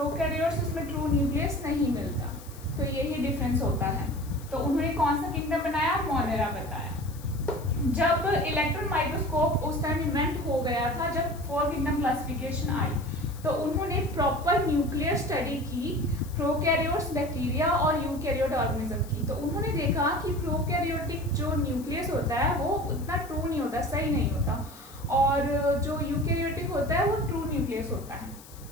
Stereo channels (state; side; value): noise; left; hiss, 20 dB below the sound